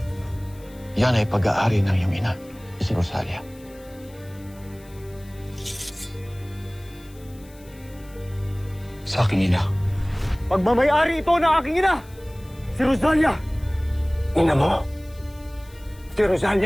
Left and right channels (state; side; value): noise; left; hiss, 25 dB below the sound